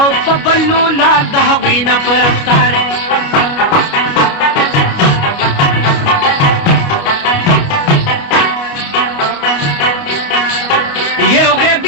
په بلو لال د هغوی نه په رفتار یو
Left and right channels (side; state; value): right; late; 29 ms